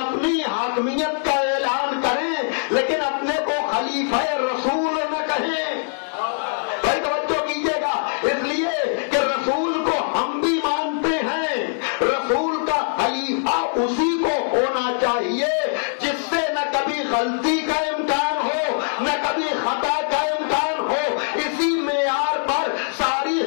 حاکمیت کا اعلان کریں لیکن اپنے کو خلیفہ رسول نہ کہیں۔ بھائی توجہ کیجیے گا، اس لیے کہ رسول کو ہم بھی مانتے ہیں، رسول کا خلیفہ اسی کو ہونا چاہیے جس سے نہ کبھی غلطی کا امکان ہو نہ کبھی خطا کا امکان ہو۔ اسی معیار پر ساری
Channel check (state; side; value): silent; right; digital silence